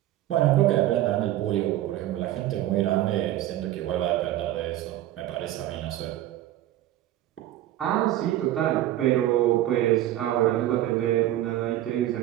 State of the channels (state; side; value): quieter; left; 13.8 dB